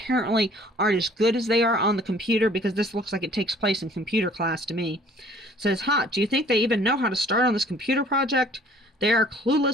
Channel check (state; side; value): normal; both; correlation 0.55